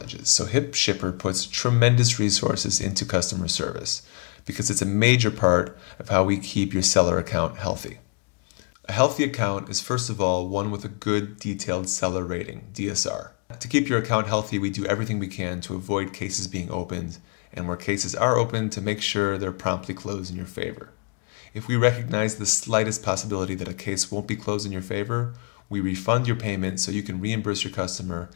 so HipShipper puts tremendous resources into customer service because it's a major part of how we keep your seller account healthy. A healthy account is first of all one with a good detailed seller rating, DSR. To keep your account healthy, we do everything we can to avoid cases being opened, and where cases are opened, to make sure they're promptly closed in your favor. If we recognize the slightest possibility that a case won't be closed in your favor, we refund your payment so you can reimburse your customer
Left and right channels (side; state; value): right; quieter; 33.9 dB